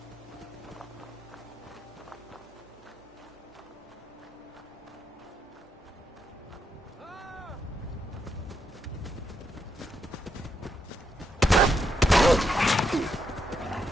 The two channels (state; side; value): normal; both; correlation 0.81